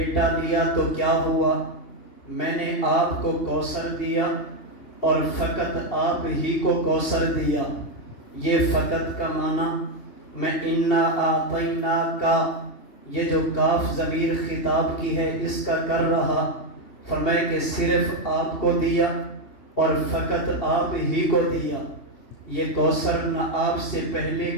دیا تو کیا ہوا، میں نے آپ کو کوثر دیا اور فقط آپ ہی کو کوثر دیا۔ یہ فقط کا معنی میں انا اعطیناک، یہ جو کاف ضمیر خطاب کی ہے اس کا کر رہا، فرمائے کہ صرف آپ کو دیا اور فقط آپ ہی کو دیا۔ یہ کوثر نہ آپ سے پہلے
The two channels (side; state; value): right; late; 2.8 ms